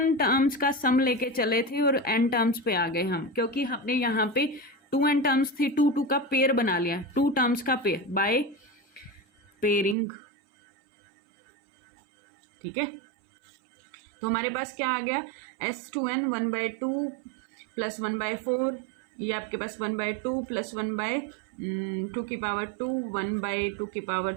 टर्म्स का सम लेके चले थे और n टर्म्स पे आ गए हम, क्योंकि हमने यहाँ पे 2n टर्म्स थी, 2 का पेयर बना लिया, 2 टर्म्स का पेयर बाय पेयरिंग, ठीक है। तो हमारे पास क्या आ गया, S2n 1/2 प्लस 1/4, ये आपके पास 1/2 प्लस 1/2 की पावर 2, 1/2 की पावर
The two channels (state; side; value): drops out; left; at 10.0 s